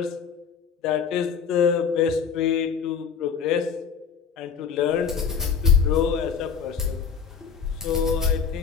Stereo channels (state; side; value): quieter; right; 6.5 dB